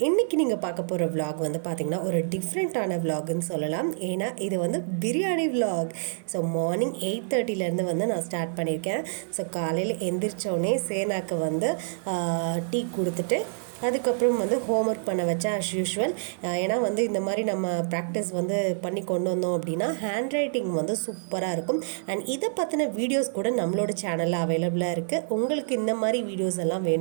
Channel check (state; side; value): silent; left; 60 dB below the other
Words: இன்றைக்கி நீங்கள் பார்க்க போகிற விலாக் வந்து பார்த்திங்கன்னா ஒரு டிஃப்ரெண்ட்டான விலாக்னு சொல்லலாம். ஏன்னா இது வந்து பிரியாணி விலாக். ஸோ மார்னிங் 8:30 வந்து நான் ஸ்டார்ட் பண்ணியிருக்கேன். ஸோ காலையில் எந்திரிச்சோடனே சேனாக்கு வந்து டீ கொடுத்துட்டு அதுக்கப்புறம் வந்து ஹோம்ஒர்க் பண்ண வச்சேன் அஸ் யூஷுவல். ஏன்னா வந்து இந்த மாதிரி நம்ம ப்ராக்டிஸ் வந்து பண்ணி கொண்டு வந்தோம் அப்படின்னா ஹேண்ட் ரைட்டிங் வந்து சூப்பராக இருக்கும். அண்ட் இதை பற்றின வீடியோஸ் கூட நம்மளோட சேனலில் அவைலபிளாக இருக்குது. உங்களுக்கு இந்த மாதிரி வீடியோஸ் எல்லாம்